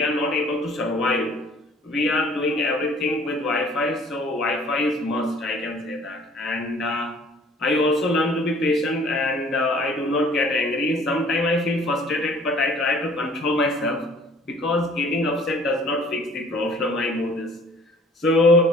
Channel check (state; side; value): normal; both; correlation 0.53